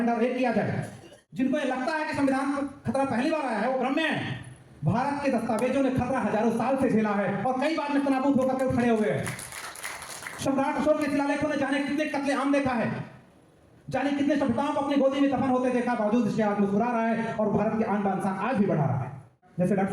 और एक किया जाए। जिनको ये लगता है कि संविधान को खतरा पहली बार आया है वो भ्रम में है। भारत के दस्तावेजों ने खतरा हजारों साल से झेला है और कई बार नेस्तनाबूद होकर खड़े हुए हैं। सम्राट अशोक के शिलालेखों ने जाने कितने कत्लेआम देखा है, जाने कितने सभ्यताओं को अपनी गोदी में दफन होते देखा, बावजूद इसके आज मुस्कुरा रहा है और भारत की आन बान शान आज भी बढ़ा रहा है। जैसे डॉक्टर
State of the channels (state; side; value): identical; both; correlation 1.00